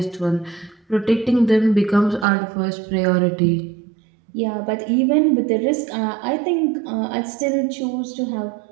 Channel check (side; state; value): left; drops out; at 2.2 s